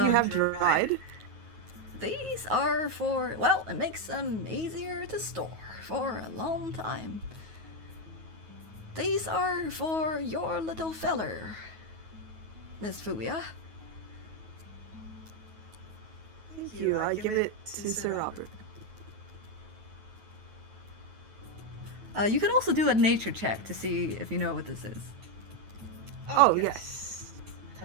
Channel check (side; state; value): left; late; 9.3 ms